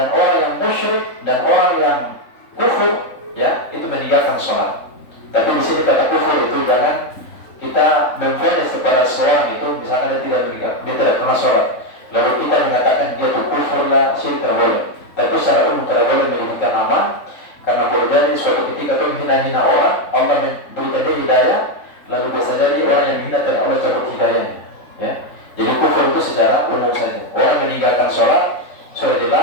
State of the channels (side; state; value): right; late; 3.5 ms